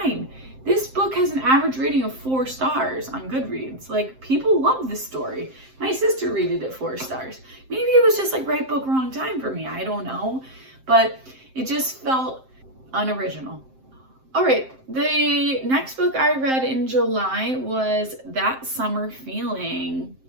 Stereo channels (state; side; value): late; left; 7.7 ms